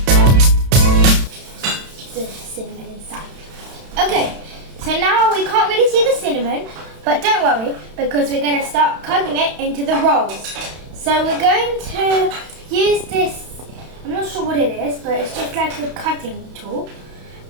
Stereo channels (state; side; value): late; left; 31 ms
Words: Cinnamon inside. Okay, so now we can't really see the cinnamon, but don't worry because we're going to start cutting it into the rolls. So we're going to use this, I'm not sure what it is, but it's just like a cutting tool,